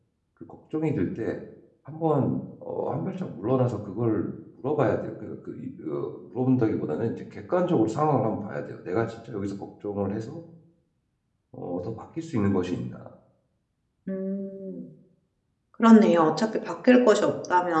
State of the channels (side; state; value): both; identical; correlation 1.00